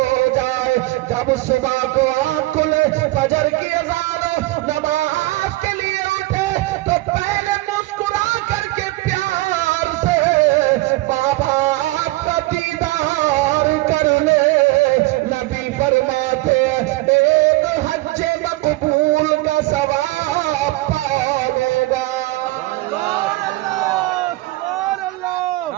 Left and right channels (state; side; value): quieter; left; 19.9 dB